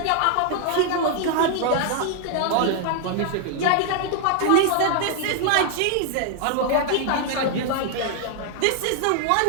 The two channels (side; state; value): both; different; correlation 0.00